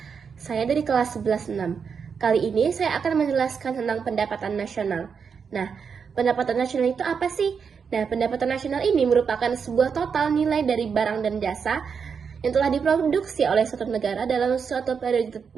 Saya dari kelas 11-6. Kali ini saya akan menjelaskan tentang pendapatan nasional. Nah, pendapatan nasional itu apa sih? Nah, pendapatan nasional ini merupakan sebuah total nilai dari barang dan jasa yang telah diproduksi oleh suatu negara dalam suatu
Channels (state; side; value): quieter; left; 6.3 dB